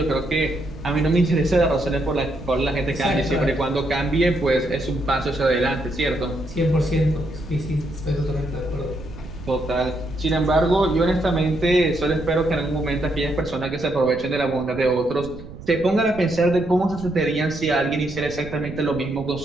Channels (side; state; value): right; noise; rumble, 14 dB below the sound